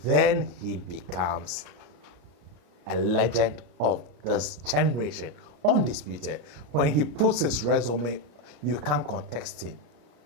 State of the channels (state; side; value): late; left; 34 ms